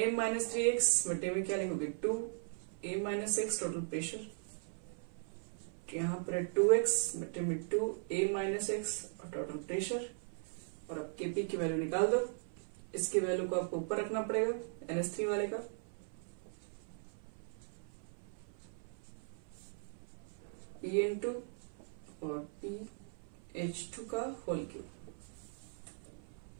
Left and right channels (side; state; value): left; silent; 52 dB below the other